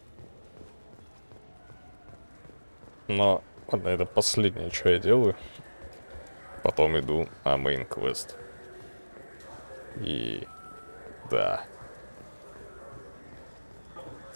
Но, ладно, это последнее, что я делаю. Потом иду на мейн квест. И... да.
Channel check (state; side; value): inverted; both; correlation -1.00